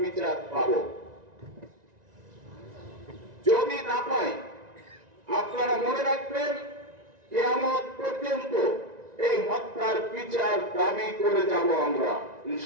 বিচার পাব। যদি না পাই আপনারা মনে রাখবেন কিয়ামত পর্যন্ত এই হত্যার বিচার দাবি করে যাব আমরা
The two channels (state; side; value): late; left; 1.9 ms